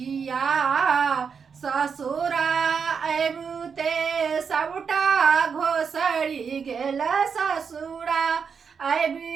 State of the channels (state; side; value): quieter; left; 6.2 dB